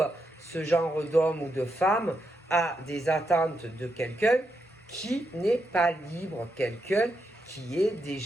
ce genre d'homme ou de femme a des attentes de quelqu'un qui n'est pas libre, quelqu'un qui est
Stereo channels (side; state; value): both; normal; correlation 0.82